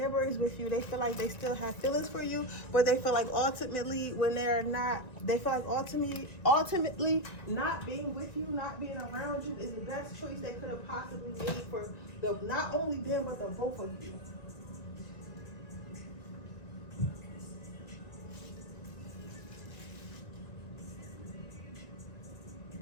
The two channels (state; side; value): late; right; 1.9 ms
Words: with you. They feel like they still have feelings for you, but they feel like ultimately when they're not, they feel like ultimately not being with you, not being around you is the best choice they could have possibly made for not only them, but the both of you.